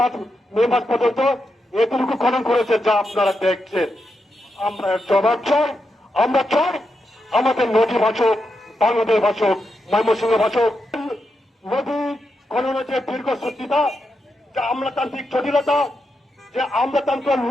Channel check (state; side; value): normal; both; correlation 0.85